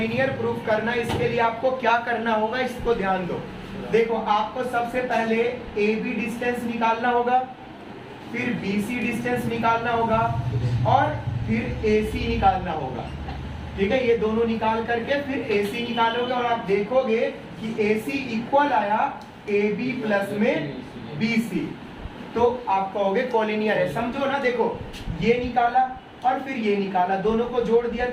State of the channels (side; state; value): both; identical; correlation 1.00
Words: प्रूफ करना है, इसके लिए आपको क्या करना होगा, इसको ध्यान दो। देखो आपको सबसे पहले AB डिस्टेंस निकालना होगा, फिर BC डिस्टेंस निकालना होगा, और फिर AC निकालना होगा। ठीक है, ये दोनों निकाल करके फिर AC निकालोगे, और आप देखोगे कि AC इक्वल आया AB प्लस में BC, तो आप कहोगे कॉलिनियर है। समझो ना, देखो ये निकाला और फिर ये निकाला, दोनों को जोड़ दिया